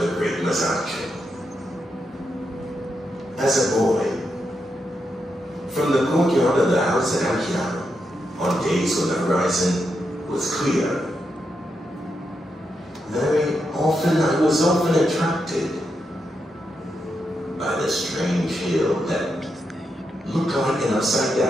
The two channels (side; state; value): both; normal; correlation 0.84